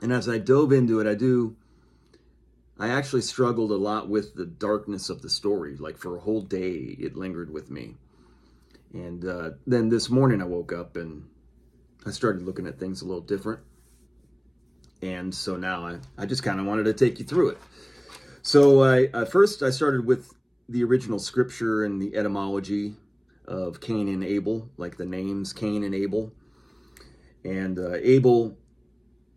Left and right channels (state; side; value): identical; both; correlation 1.00